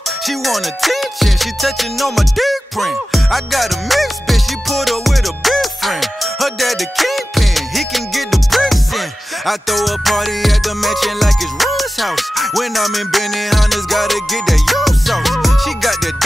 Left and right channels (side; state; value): both; normal; correlation 0.94